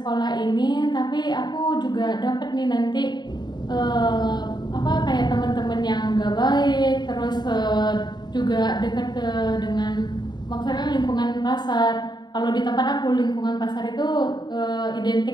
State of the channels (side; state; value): right; late; 0.21 ms